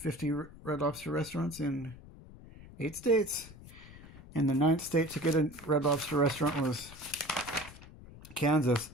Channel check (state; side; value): noise; left; rumble, 18 dB below the sound